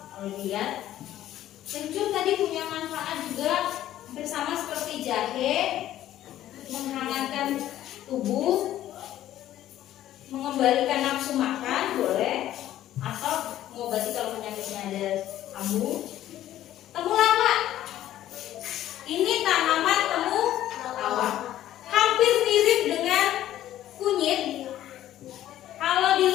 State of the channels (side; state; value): right; quieter; 12.9 dB